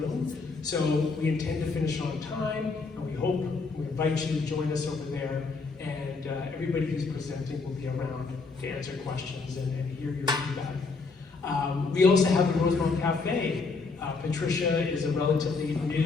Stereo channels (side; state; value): right; quieter; 4.2 dB